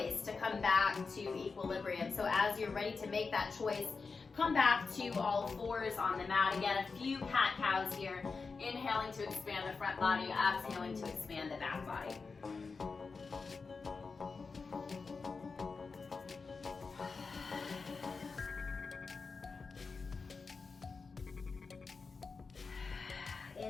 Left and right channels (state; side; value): quieter; right; 4.6 dB